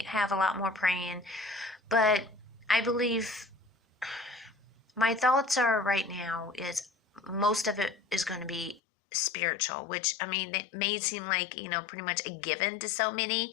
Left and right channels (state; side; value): drops out; right; at 8.8 s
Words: have a lot more praying, but I believe my thoughts are right now is most of it is going to be spiritual, which, I mean, it may seem like, pretty much a given to so many,